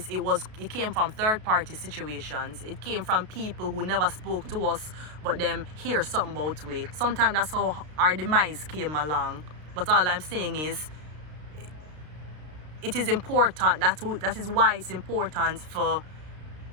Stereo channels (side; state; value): left; late; 33 ms